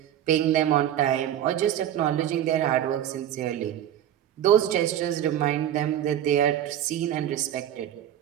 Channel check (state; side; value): quieter; left; 11.1 dB